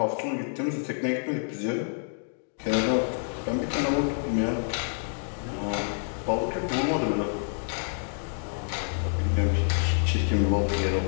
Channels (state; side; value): silent; right; digital silence